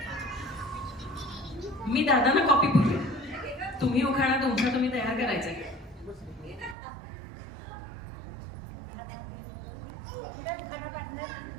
मी दादांना कॉपी पुरले, तुम्ही उखाणा तुमचा तुम्ही तयार करायचा आहे.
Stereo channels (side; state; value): left; drops out; at 6.8 s